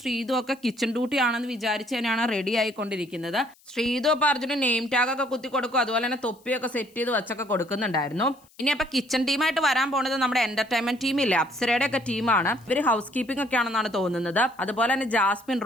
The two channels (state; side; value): noise; left; hiss, 30 dB below the sound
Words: ശ്രീതു ഒക്കെ കിച്ചൺ ഡ്യൂട്ടി ആണെന്ന് വിചാരിച്ച് തന്നെയാണ് റെഡി ആയിക്കൊണ്ടിരിക്കുന്നത്. ശ്രീതു അപ്പൊ അർജുന് നെയിം ടാഗ് ഒക്കെ കുത്തി കൊടുക്കും, അതുപോലെ തന്നെ തൊപ്പിയൊക്കെ സെറ്റ് ചെയ്ത് വെച്ചൊക്കെ കൊടുക്കുന്നുണ്ടായിരുന്നു. ഇനി അപ്പൊ കിച്ചൺ ടീമായിട്ട് വരാൻ പോകുന്നത് നമ്മുടെ എന്റർടൈൻമെന്റ് ടീമില്ലേ, അപ്സരയുടെ ഒക്കെ ടീമാണ്. ഇവര് ഹൗസ് കീപ്പിംഗ് ഒക്കെ ആണെന്നാണ് തോന്നുന്നത്. അതുപോലെ തന്നെ ജാസ്മിൻ